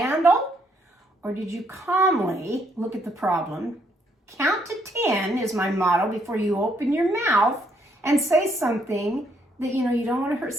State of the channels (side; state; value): both; normal; correlation 0.71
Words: Or did you calmly look at the problem? Count to 10 is my motto before you open your mouth and say something that, you don't want to hurt